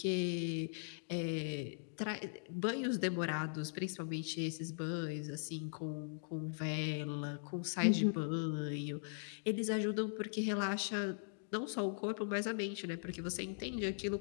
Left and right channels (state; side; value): silent; right; digital silence